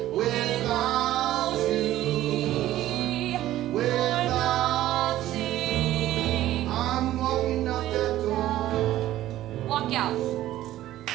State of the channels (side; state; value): left; quieter; 14.1 dB